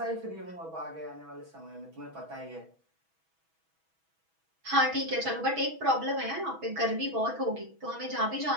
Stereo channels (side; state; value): left; late; 6.2 ms